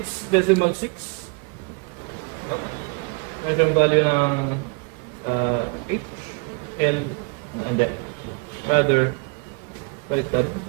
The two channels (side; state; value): left; quieter; 32.5 dB